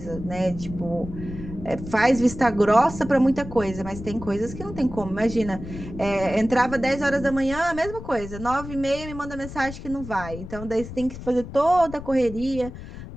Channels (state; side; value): noise; left; rumble, 11 dB below the sound